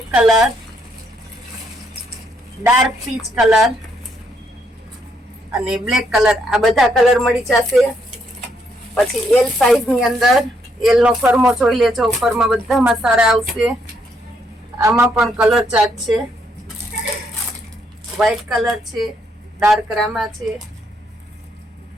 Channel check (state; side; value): normal; both; correlation 0.74